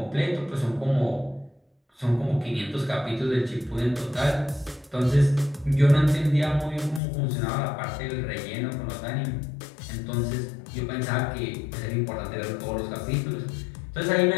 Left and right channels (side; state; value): right; drops out; at 7.0 s